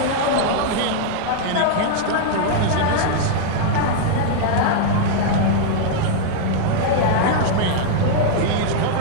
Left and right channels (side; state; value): both; different; correlation -0.01